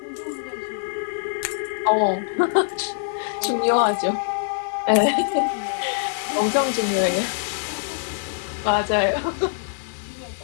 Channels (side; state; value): right; silent; digital silence